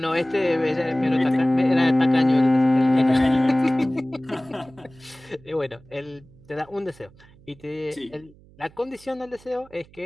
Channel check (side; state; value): right; noise; hum, 26 dB below the sound